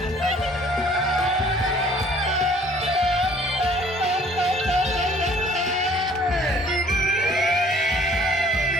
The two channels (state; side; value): normal; both; correlation 0.56